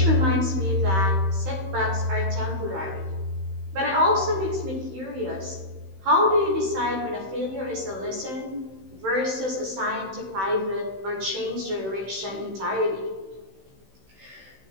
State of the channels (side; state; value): left; late; 16 ms